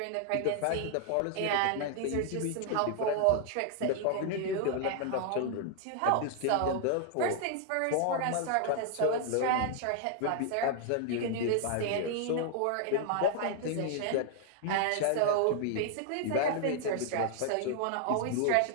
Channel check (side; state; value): both; different; correlation 0.00